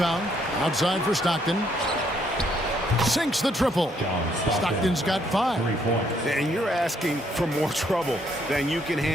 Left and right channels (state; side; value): normal; both; correlation 0.70